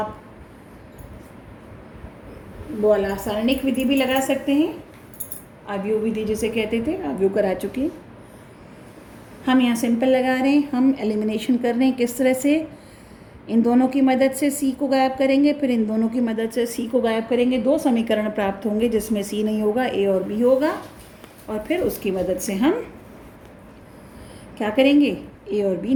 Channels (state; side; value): identical; both; correlation 1.00